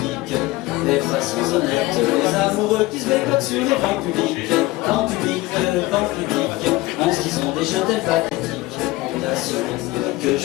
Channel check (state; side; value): quieter; right; 19.6 dB